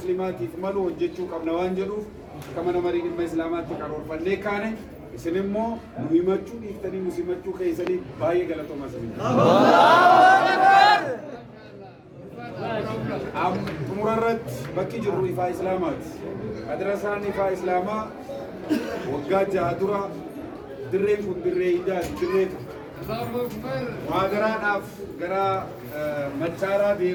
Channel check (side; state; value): both; identical; correlation 1.00